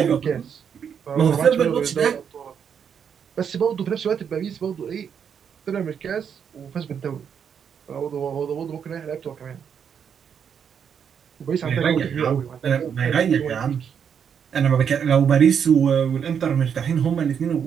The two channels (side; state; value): left; quieter; 7.6 dB